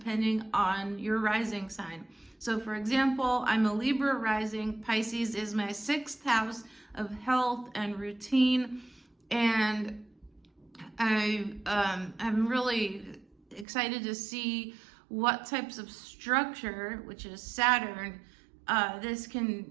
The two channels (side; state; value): left; drops out; at 13.7 s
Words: on your rising sign. So for example, I'm a Libra rising. Pisces is my 6th house of health and routine. And I'm really excited to see what types of structure, which is Saturn, this